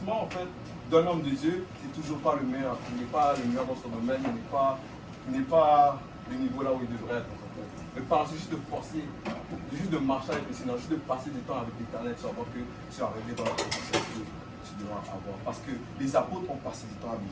en fait d'un homme de Dieu, c'est toujours pas le meilleur. Il n'est pas le meilleur dans son domaine, il n'est pas le niveau là où il devrait être. Mais par juste de forcer, juste de marcher avec le Seigneur, juste de passer du temps avec l'Éternel, tu vas voir que tu es arrivé dans la position que tu dois avoir. Parce que les apôtres ont passé du temps avec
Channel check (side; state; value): both; identical; correlation 1.00